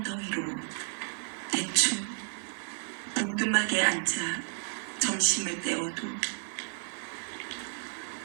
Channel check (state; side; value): silent; left; digital silence